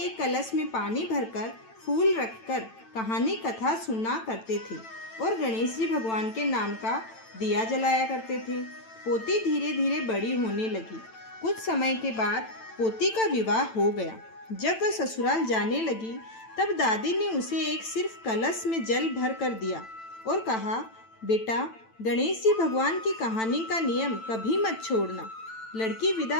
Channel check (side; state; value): right; late; 9.0 ms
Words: कलश में पानी भरकर फूल रखकर कहानी कथा सुना करते थे और गणेश जी भगवान के नाम का दिया जलाया करते थे। पोती धीरे धीरे बड़ी होने लगी। कुछ समय के बाद पोती का विवाह हो गया। जब वह ससुराल जाने लगी, तब दादी ने उसे एक सिर्फ कलश में जल भर कर दिया और कहा, बेटा, गणेश जी भगवान की कहानी का नियम कभी मत छोड़ना। लड़की